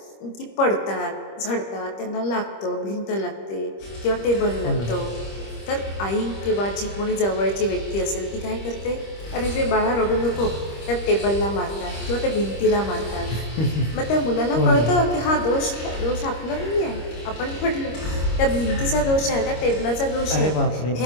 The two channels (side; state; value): right; late; 25 ms